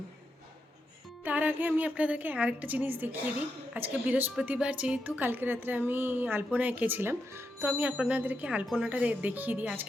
তার আগে আমি আপনাদেরকে আরেকটা জিনিস দেখিয়ে দিই। আজকে বৃহস্পতিবার, যেহেতু কালকে রাত্রে আমি আলপনা এঁকেছিলাম, তো আমি আপনাদেরকে আলপনাটা দেখিয়ে দিই।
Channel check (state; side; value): normal; both; correlation 0.85